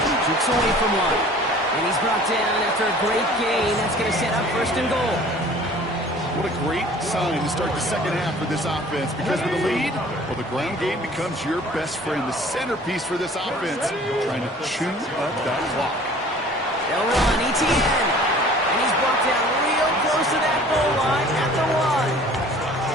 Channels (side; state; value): both; normal; correlation 0.49